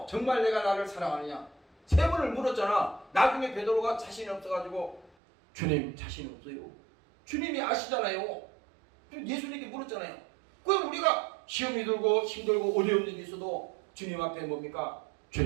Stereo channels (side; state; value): left; drops out; at 5.1 s